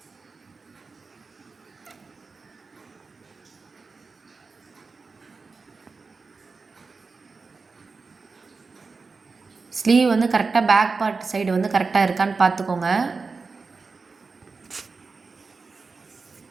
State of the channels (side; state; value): left; quieter; 4.4 dB